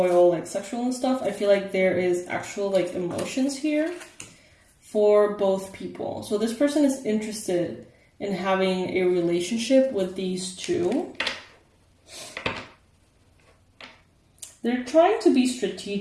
all like sexual and stuff. I feel like there is actual like emotions here for both people. So this person is interested in having a relationship with these 2. They're trying to be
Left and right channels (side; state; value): both; identical; correlation 1.00